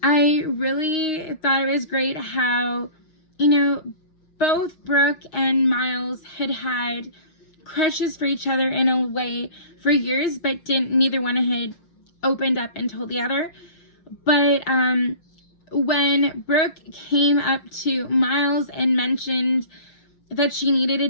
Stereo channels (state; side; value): late; right; 6.4 ms